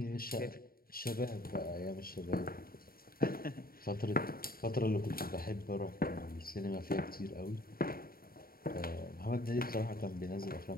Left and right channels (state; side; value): late; right; 0.43 ms